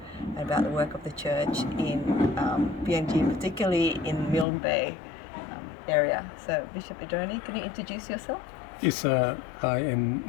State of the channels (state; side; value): drops out; right; at 4.5 s